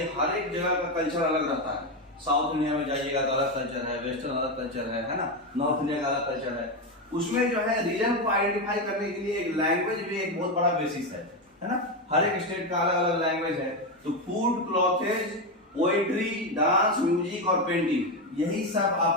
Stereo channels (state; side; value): normal; both; correlation 0.11